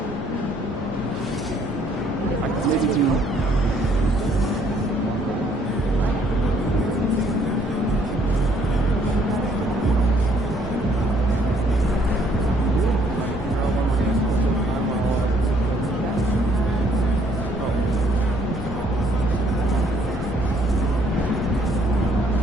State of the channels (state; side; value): normal; both; correlation 0.65